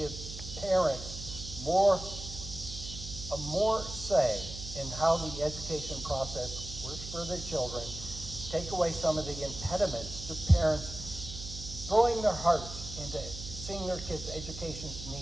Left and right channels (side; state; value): right; noise; hum, 10 dB below the sound